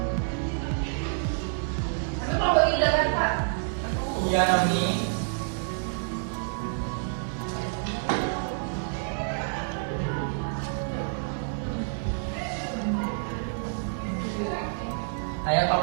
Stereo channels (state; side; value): silent; left; 59 dB below the other